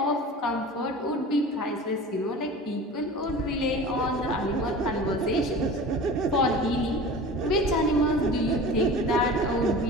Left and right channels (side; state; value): both; normal; correlation 0.37